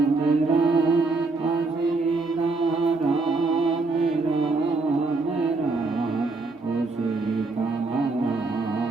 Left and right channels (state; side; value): quieter; left; 3.6 dB